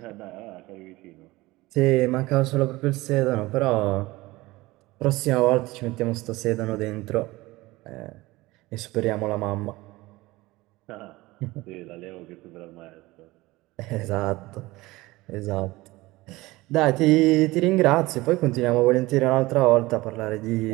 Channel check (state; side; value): quieter; left; 20.0 dB